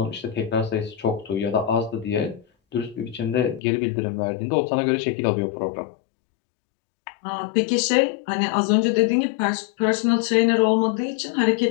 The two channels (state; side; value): drops out; right; at 3.6 s